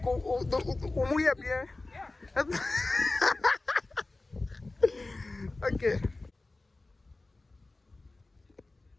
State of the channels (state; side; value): quieter; right; 3.1 dB